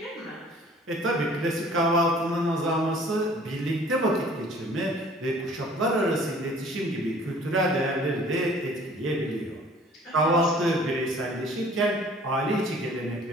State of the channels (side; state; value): both; normal; correlation 0.52